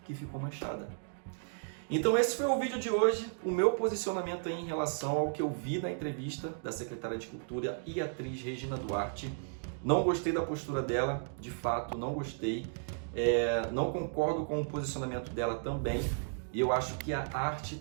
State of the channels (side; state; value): left; silent; digital silence